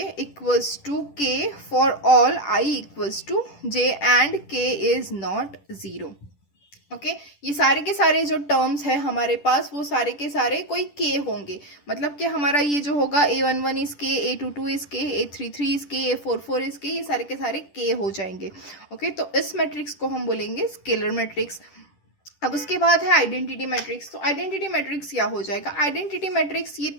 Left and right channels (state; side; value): late; right; 10 ms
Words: equals to k for all i equals to j and k is not 0, okay. ये सारे के सारे जो टर्म्स है हमारे पास वो सारे के सारे कोई k होंगे, मतलब कि हमारा ये जो होगा a11 is k, a22 is k, a33 is k, a44 is k, ये सारे के सारे k हो जाएंगे, ओके। तो इस मैट्रिक्स को हम बोलेंगे स्केलर मैट्रिक्स। अब उसके बाद है आइडेंटिटी मैट्रिक्स। तो आइडेंटिटी मैट्रिक्स क्या हो जाएगा, आइडेंटिटी मैट्रिक्स ये